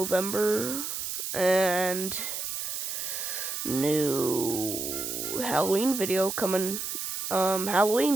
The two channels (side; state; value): right; noise; hiss, 4 dB below the sound